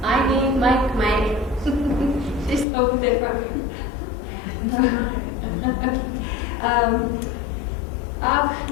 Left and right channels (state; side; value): drops out; right; at 2.7 s